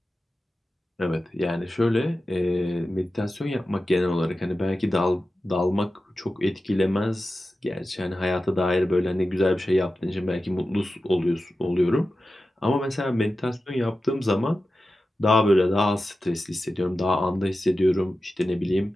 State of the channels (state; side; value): normal; both; correlation 0.93